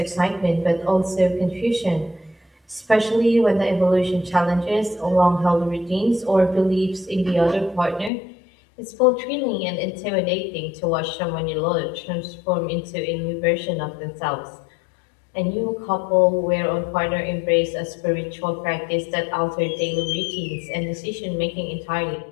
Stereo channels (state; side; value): drops out; right; at 8.1 s